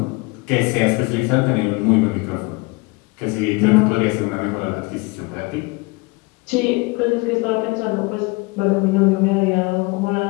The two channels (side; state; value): right; quieter; 26.3 dB